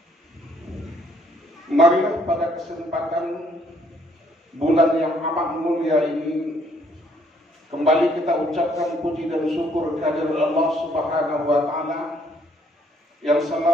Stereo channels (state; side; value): normal; both; correlation 0.66